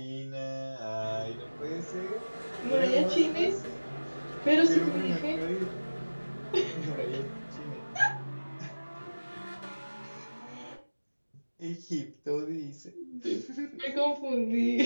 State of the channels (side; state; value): both; inverted; correlation -1.00